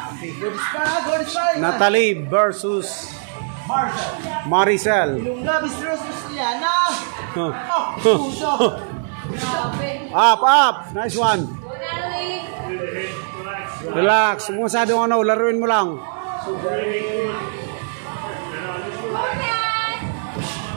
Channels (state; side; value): silent; left; 65 dB below the other